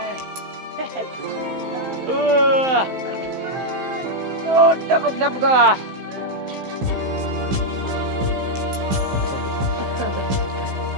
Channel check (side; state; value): left; late; 15 ms